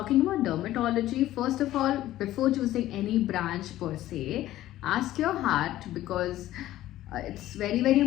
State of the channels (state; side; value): quieter; right; 14.4 dB